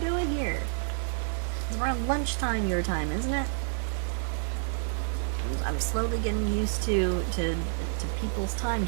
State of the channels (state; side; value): silent; left; digital silence